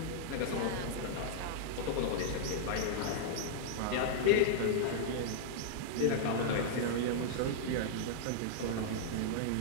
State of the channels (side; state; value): both; different; correlation -0.02